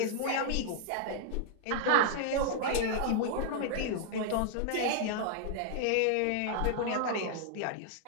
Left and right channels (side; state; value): both; different; correlation 0.00